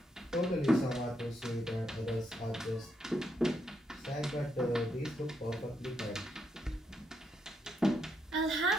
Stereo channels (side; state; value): both; normal; correlation 0.79